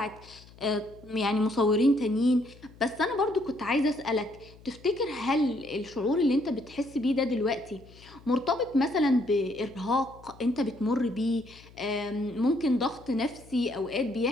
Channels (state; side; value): noise; left; hum, 23 dB below the sound